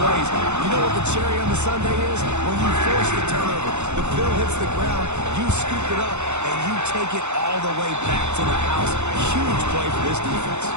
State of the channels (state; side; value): late; left; 0.83 ms